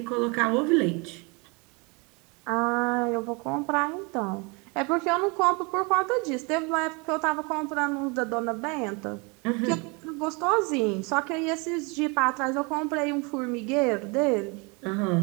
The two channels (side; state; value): left; quieter; 29.7 dB